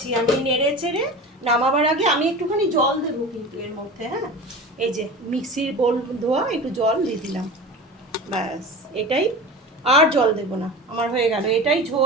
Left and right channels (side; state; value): both; normal; correlation 0.33